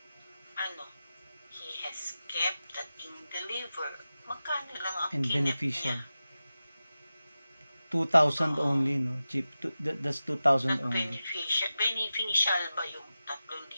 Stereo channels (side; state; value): both; inverted; correlation -0.94